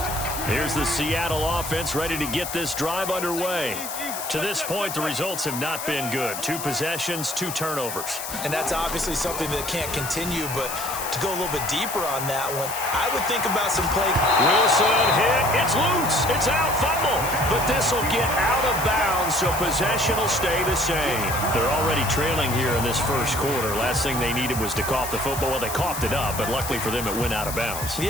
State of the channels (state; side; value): noise; left; hiss, 7 dB below the sound